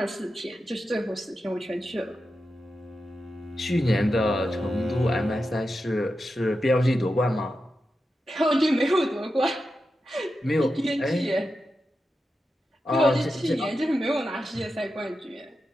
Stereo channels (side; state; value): both; normal; correlation 0.90